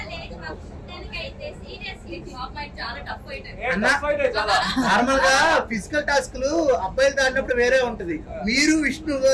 నార్మల్ గా ఫిజికల్ టాస్క్లు అబ్బాయిలతో ఆడినప్పుడు వేరే ఉంటది, మీరు విష్ణు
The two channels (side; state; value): both; identical; correlation 1.00